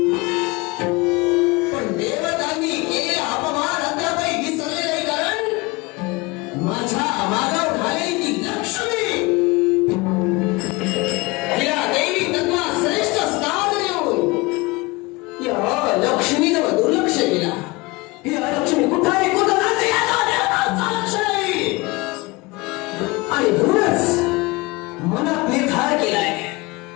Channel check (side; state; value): right; quieter; 24.2 dB